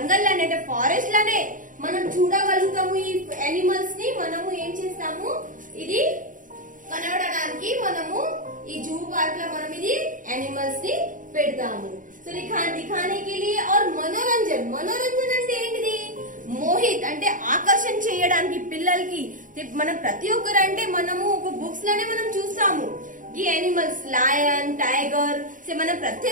లోనే అంటే ఫారెస్ట్ లోనే మనం చూడగలుగుతాము. ఈ ఎనిమల్స్ ని మనము ఏం చేస్తాము ఇది కనబడడానికి మనము ఈ జూ పార్క్ లో మనం ఇది ఎనిమల్స్ ని పెడతాము. సో दिखाने के लिए और मनोरंजन అంటే ఏంటిది. మోహిత్ అంటే ఆకర్షణ చేయడానికి పిల్లలకి మనం ప్రతి ఒక్కరు అంటే మనము ఒక బుక్స్ లోనే మనం చూస్తాము ఈ ఎనిమల్స్ లయన్ టైగర్. సో మనం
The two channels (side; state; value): left; late; 0.38 ms